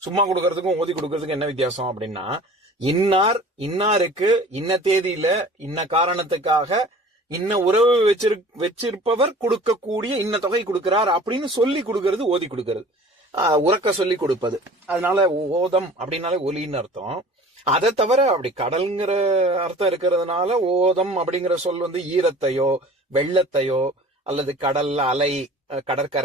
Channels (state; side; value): normal; both; correlation 0.44